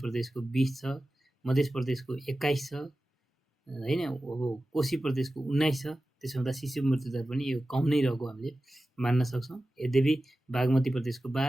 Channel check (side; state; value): both; normal; correlation 0.95